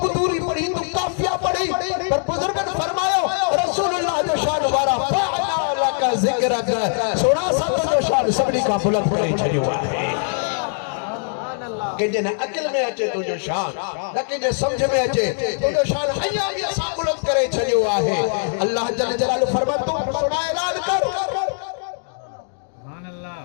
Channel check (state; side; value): silent; right; digital silence